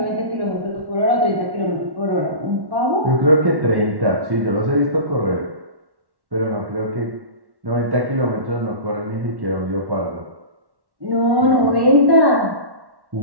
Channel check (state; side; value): late; left; 1.1 ms